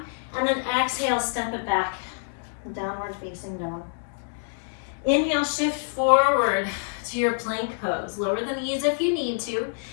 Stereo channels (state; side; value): silent; right; digital silence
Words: and then exhale, step it back, downward facing dog. Inhale, shift forward to your plank pose. Lower the knees if you need to.